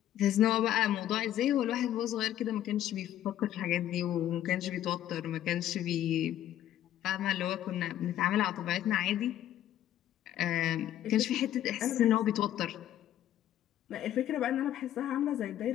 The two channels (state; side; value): quieter; right; 12.0 dB